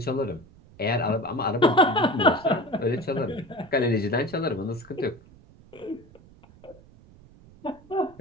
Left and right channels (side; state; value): right; noise; rumble, 24 dB below the sound